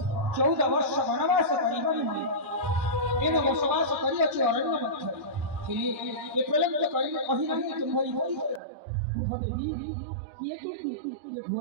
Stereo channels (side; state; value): left; drops out; at 8.6 s